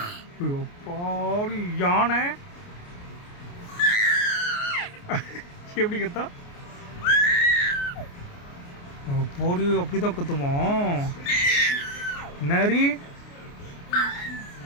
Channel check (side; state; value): right; late; 29 ms